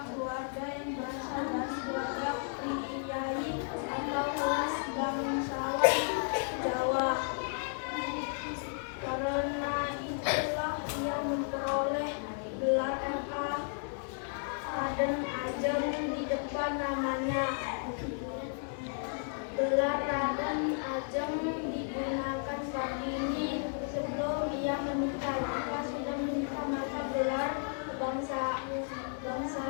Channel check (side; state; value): right; silent; 55 dB below the other